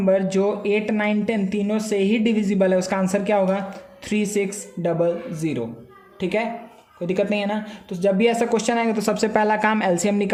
जो 8, 9, 10 तीनों से ही डिविजिबल है, उसका आंसर क्या होगा, 3600। ठीक है, कोई दिक्कत नहीं है ना? तो जब भी ऐसा क्वेश्चन आएगा तो सबसे पहला काम एलसीएम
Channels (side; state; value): both; identical; correlation 1.00